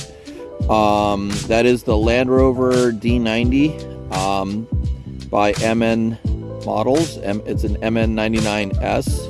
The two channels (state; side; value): identical; both; correlation 1.00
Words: That is the Land Rover D90 by MN Models. It's an